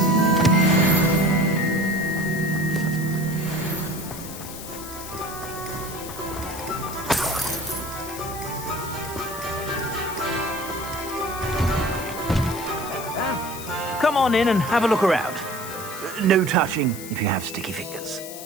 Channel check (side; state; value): left; noise; hiss, 12 dB below the sound